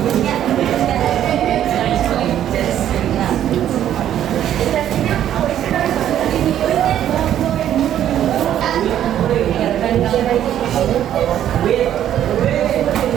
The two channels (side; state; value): left; quieter; 11.0 dB